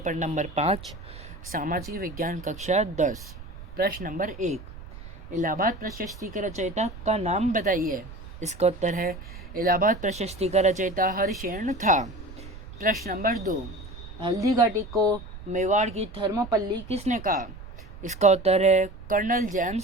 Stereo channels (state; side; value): noise; right; rumble, 14 dB below the sound